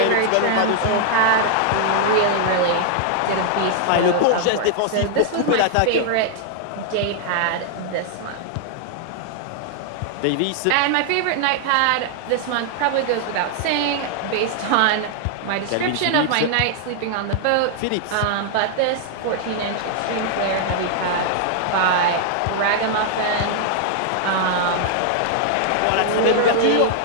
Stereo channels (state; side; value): different; both; correlation -0.01